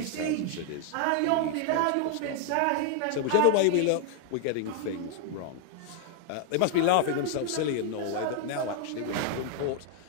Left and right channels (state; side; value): different; both; correlation 0.00